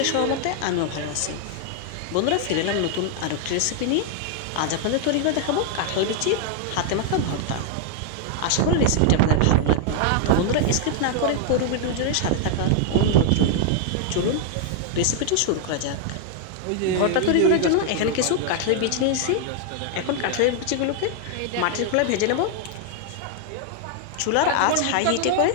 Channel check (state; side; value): different; both; correlation 0.00